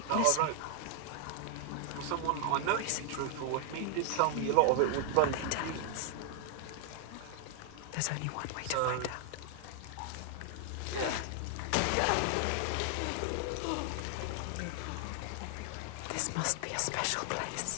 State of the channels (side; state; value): both; different; correlation 0.00